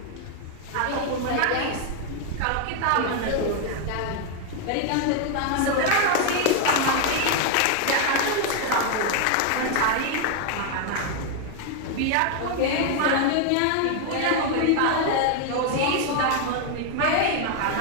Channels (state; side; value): different; both; correlation 0.01